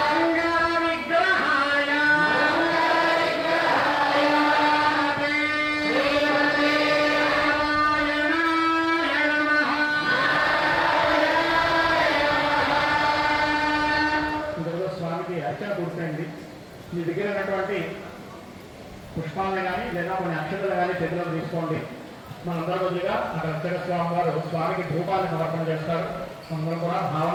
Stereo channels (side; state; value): both; identical; correlation 1.00